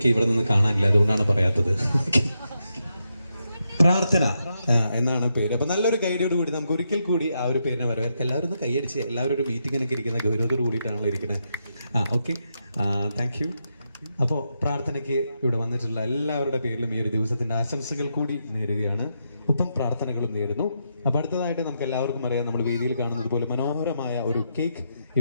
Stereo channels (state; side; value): inverted; both; correlation -0.83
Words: ഇവിടെ നിന്ന് കാണാനില്ല, അതുകൊണ്ടാണ് പറയാത്തത്. പ്രാർത്ഥന എന്നാണ് പേര്. അപ്പൊ നല്ലൊരു ഗൈഡിയോട് കൂടി നമുക്ക് ഒരിക്കൽ കൂടി ആ ഒരു പേരിനെ വരവേൽക്കാം. എല്ലാവരും ഒന്ന് കൈയടിച്ച്, എല്ലാവരും ഒരു മീറ്റിങ്ങിനൊക്കെ ഇരിക്കുന്ന ഗൗരവത്തോട് കൂടിയിട്ടാണല്ലോ ഇരിക്കുന്നത്. Okay, thank you. അപ്പോൾ പ്രാർത്ഥനയ്ക്ക് ഇവിടെ വന്നിട്ടുള്ള എല്ലാവരുടെ പേരിലും ഈ ഒരു ദിവസത്തിന്റെ ആശംസകൾ കൂടി നേരുകയാണ്, ഒപ്പം പ്രാർത്ഥനകളും നേരുന്നു. അപ്പൊ അടുത്തതായിട്ട് നമുക്ക് എല്ലാവർക്കും അറിയാം, നമ്മൾ വേദിയിൽ കാണുന്നത് പോലെ മനോഹരമായ ഒരു കേക്ക്